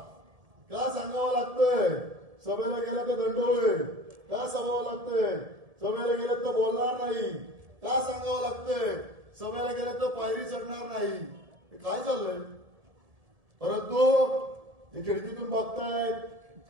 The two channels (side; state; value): left; late; 1.7 ms